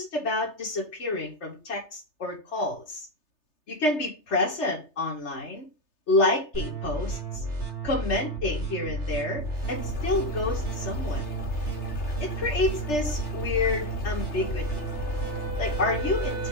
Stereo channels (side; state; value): right; late; 3.3 ms